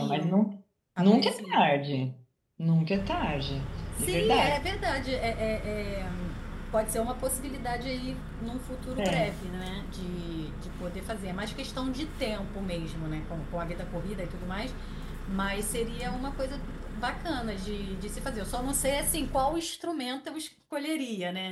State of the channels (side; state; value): both; identical; correlation 1.00